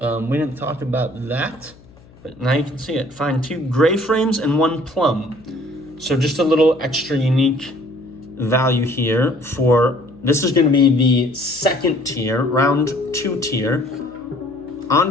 didn't talk about that, but now you can see it. Find 2 gray frames and 1 plum. So just a little extra unique value here for This is going to be the second tier, round 2 tier.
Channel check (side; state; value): left; noise; hum, 25 dB below the sound